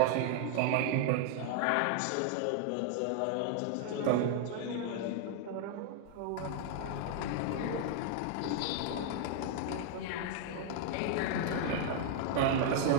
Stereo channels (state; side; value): different; both; correlation 0.00